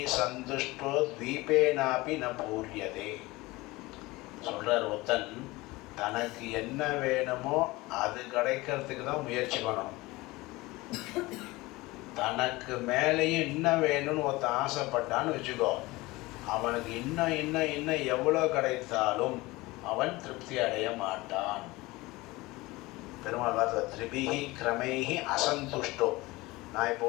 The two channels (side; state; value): right; quieter; 21.2 dB